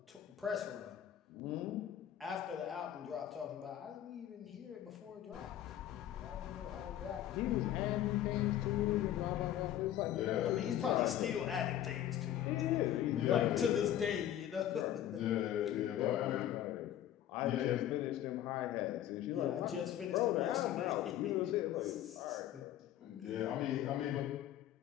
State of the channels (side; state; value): right; quieter; 11.7 dB